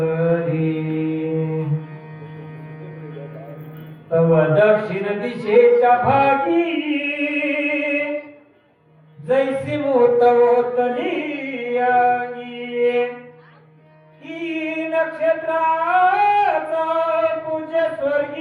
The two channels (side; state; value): both; identical; correlation 1.00